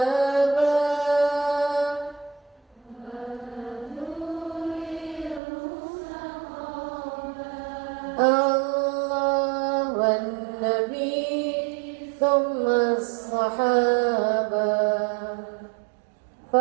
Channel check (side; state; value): left; drops out; at 5.4 s